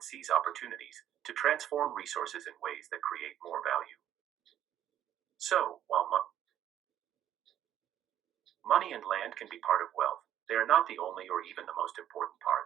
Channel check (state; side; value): quieter; left; 11.1 dB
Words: seize opportunities, to transform resources in ways that create more value. So, while money and land can be part of wealth, they are not the only or even the most important